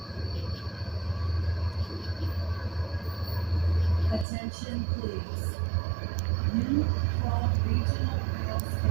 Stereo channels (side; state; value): left; drops out; at 4.2 s